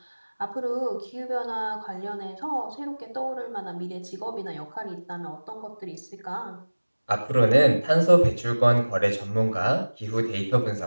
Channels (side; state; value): both; inverted; correlation -1.00